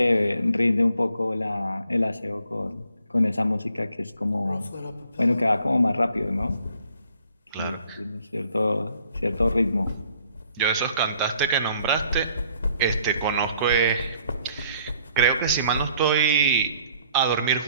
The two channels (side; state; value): both; inverted; correlation -0.63